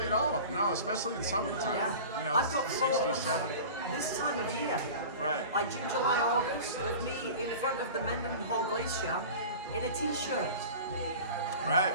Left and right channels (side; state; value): both; inverted; correlation -0.36